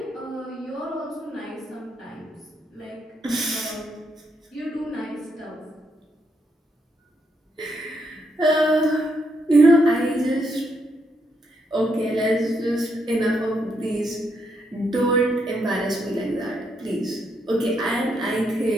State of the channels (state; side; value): normal; both; correlation 0.78